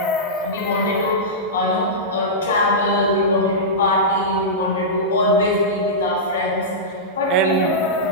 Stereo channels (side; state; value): both; normal; correlation -0.13